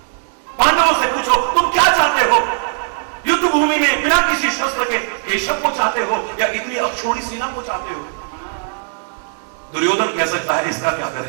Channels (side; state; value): left; silent; digital silence